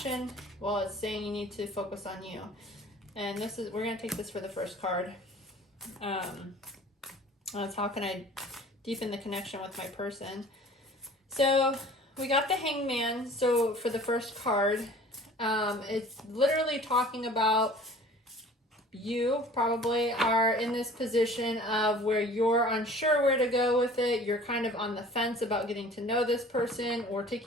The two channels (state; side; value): normal; both; correlation 0.47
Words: Well, it's saying you need to focus on you. And we're going to take this for the first card. That's how can I deepen the connection with my person? So we got the Hangman. So for the first card, it's literally talking about you probably are in this position of where you're unsure where to go with it. You're kind of on the fence about getting to know this person or